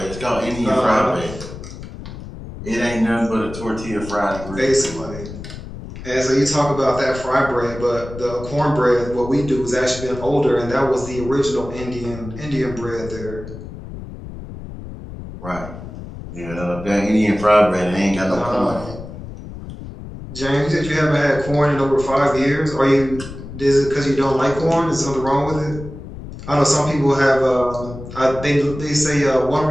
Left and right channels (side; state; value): left; noise; rumble, 12 dB below the sound